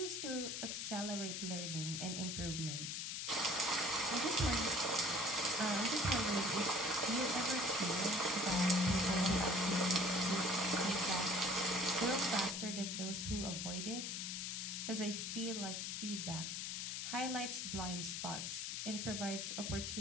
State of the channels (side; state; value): left; noise; hiss, 3 dB below the sound